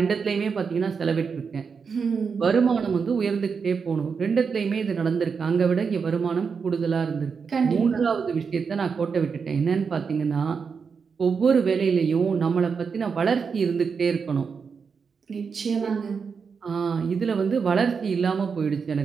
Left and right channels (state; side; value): quieter; left; 5.7 dB